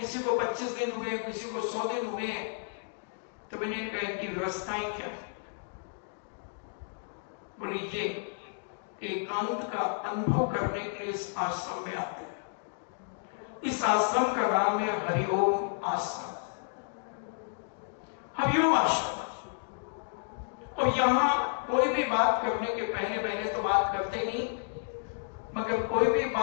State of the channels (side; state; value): right; silent; digital silence